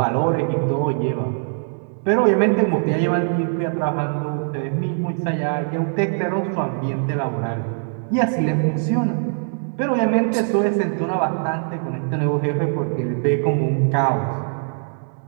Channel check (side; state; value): left; silent; 63 dB below the other